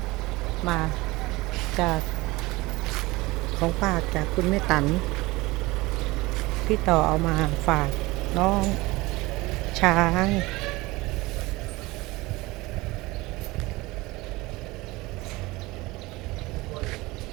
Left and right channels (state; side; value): quieter; left; 21.4 dB